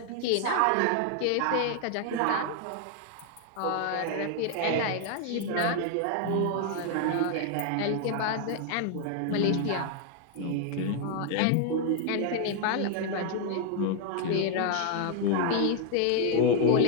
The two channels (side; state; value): both; different; correlation 0.00